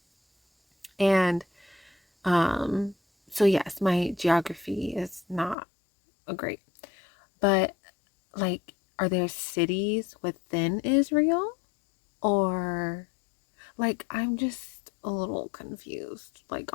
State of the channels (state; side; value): drops out; right; at 5.6 s